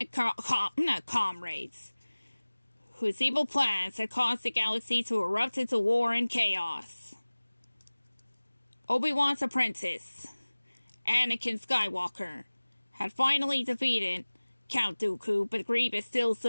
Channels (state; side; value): inverted; both; correlation -1.00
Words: comrades, whose evil plans had caused the galaxy to erupt into war and chaos. Obi-Wan's apprentice, Anakin Skywalker, had finally defeated Count Dooku, but Grievous still